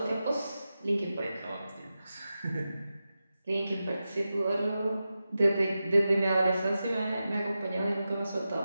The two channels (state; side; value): inverted; both; correlation -0.92